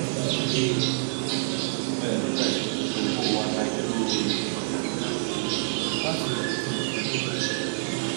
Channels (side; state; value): left; silent; 59 dB below the other